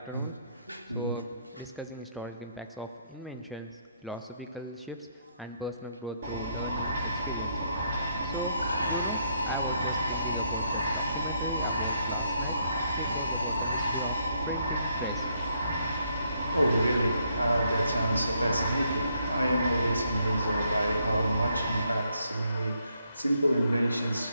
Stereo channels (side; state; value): both; inverted; correlation -0.73